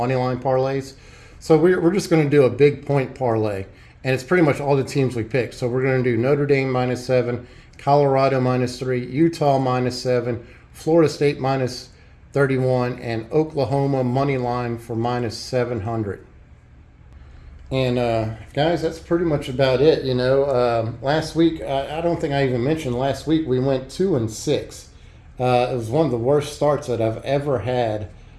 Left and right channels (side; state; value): both; identical; correlation 1.00